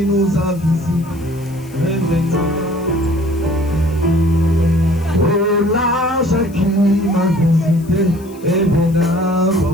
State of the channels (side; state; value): left; noise; hiss, 25 dB below the sound